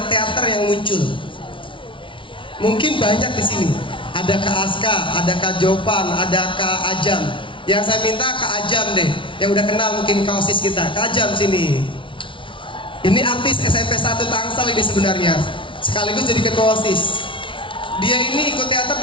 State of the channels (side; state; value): right; late; 0.25 ms